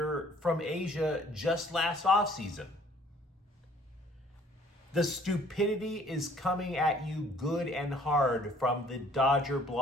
from Asia just last offseason. The stupidity is coming at you good and hard from the Dodger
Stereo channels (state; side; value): normal; both; correlation 0.57